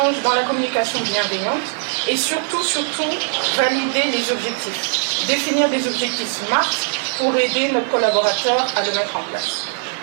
dans la communication bienveillante et surtout valider les objectifs. Définir des objectifs SMART pour aider notre collaborateur à le mettre en place.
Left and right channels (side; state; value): left; silent; 66 dB below the other